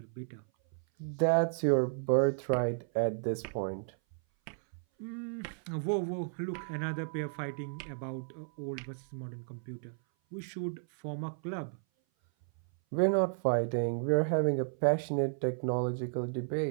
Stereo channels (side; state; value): left; silent; 56 dB below the other